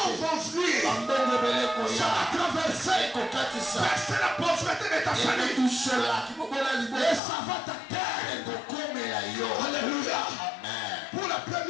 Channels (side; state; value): right; drops out; at 7.2 s